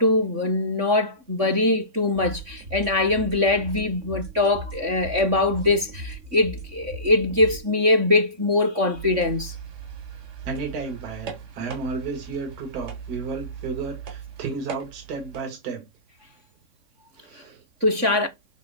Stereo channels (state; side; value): late; left; 3.5 ms